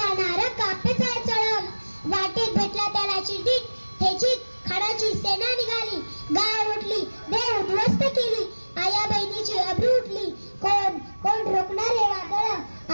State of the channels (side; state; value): both; inverted; correlation -1.00